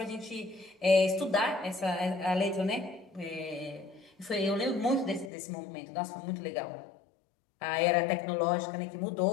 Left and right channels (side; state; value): right; drops out; at 5.3 s